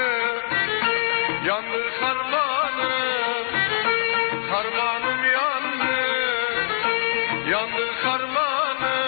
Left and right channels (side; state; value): right; silent; digital silence